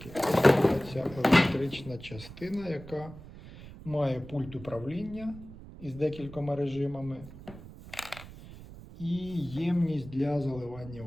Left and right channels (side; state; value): right; noise; rumble, 16 dB below the sound